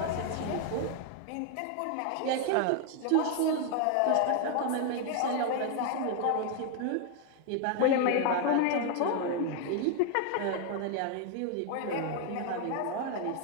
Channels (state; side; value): different; both; correlation 0.00